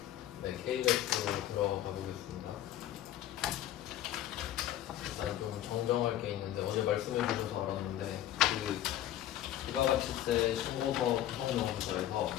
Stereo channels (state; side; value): quieter; right; 12.5 dB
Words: 네, K배수로 들어가 보겠습니다. 일단 좀 정정할 게 있는데 어제 말씀해 주셔서 알았는데 그 부가가치세 신고서 구성명부서에서